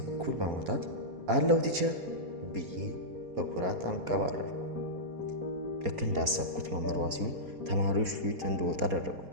እኩል በማውጣት አለው ቲቸር ብዬ በኩራት አንቀባረርኩ። ልክ እንዳሰብኩት መምህሯ ሲሆን ተማሪዎች ፊት እንድወጣ አደረጉ።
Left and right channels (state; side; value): late; left; 4.2 ms